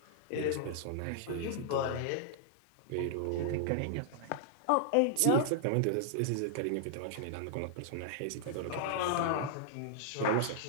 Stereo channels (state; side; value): different; both; correlation -0.01